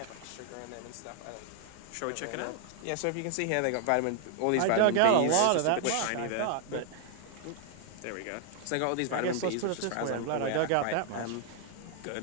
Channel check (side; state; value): both; different; correlation 0.00